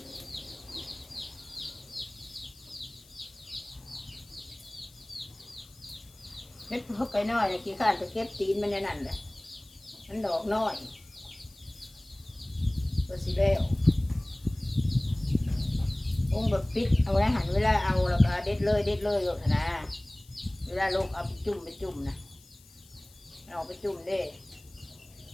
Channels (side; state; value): left; noise; hiss, 25 dB below the sound